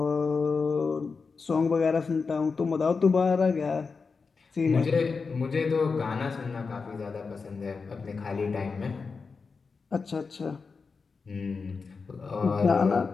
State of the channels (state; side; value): quieter; right; 4.8 dB